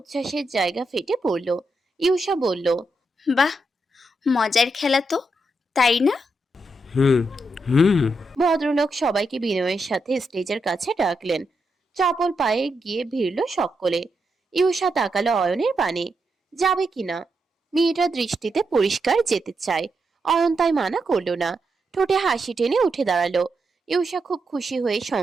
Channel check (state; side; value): normal; both; correlation 0.83